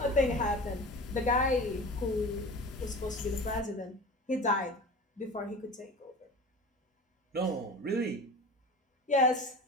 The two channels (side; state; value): both; normal; correlation 0.34